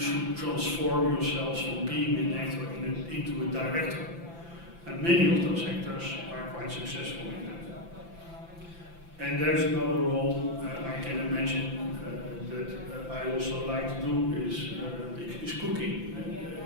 transform yourselves from being an actor into a director. And many of those actors are quite successful in that. And there's another role I can imagine that I also like to do is cooking.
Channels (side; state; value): left; late; 5.9 ms